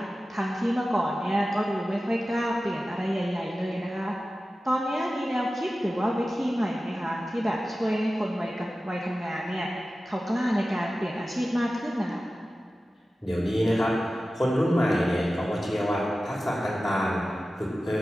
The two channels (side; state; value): both; normal; correlation 0.95